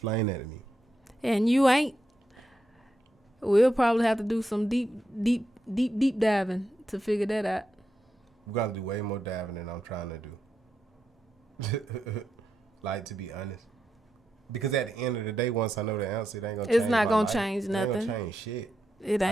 that to me. And you ain't. We'll probably have to do some deep diving to figure that out. We're gonna do way more diving than I'm trying to do. Like, to be honest. Because at the end of the day, once I know the answer, it ain't gonna change. It's not gonna change nothing. It ain't gonna change shit. It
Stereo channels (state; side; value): normal; both; correlation 0.84